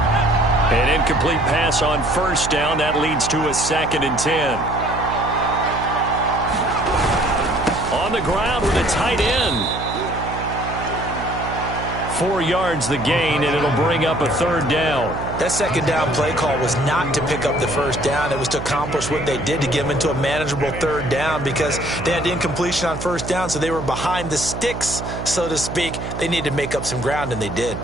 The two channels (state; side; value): noise; right; hum, 7 dB below the sound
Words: An incomplete pass on 1st down. That leads to a 2nd and 10. On the ground with a tight end. 4 yards the gain, and it'll bring up a 3rd down. That 2nd down play call was not to pick up the 1st down. It was to accomplish what they did, to get them into a manageable 3rd down, because they had incompletion on 1st down, so they were behind the sticks, so to speak. They needed to make up some ground, and they did.